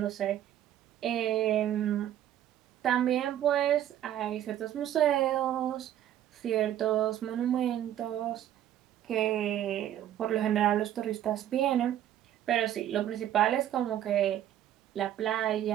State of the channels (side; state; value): left; quieter; 11.5 dB